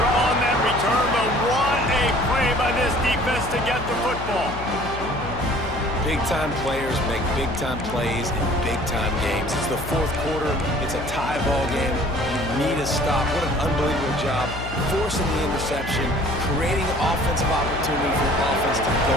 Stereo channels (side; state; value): left; noise; hum, 9 dB below the sound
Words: on that return, but what a play by this defense to get the football. Big-time players make big-time plays in big-time games. It's the fourth quarter. It's a tie ball game. You need a stop. What an unbelievable job. Forcing the interception, creating offensive opportunity for the offense to